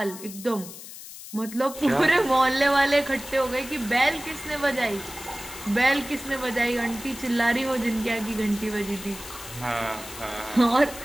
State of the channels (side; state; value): left; noise; hiss, 13 dB below the sound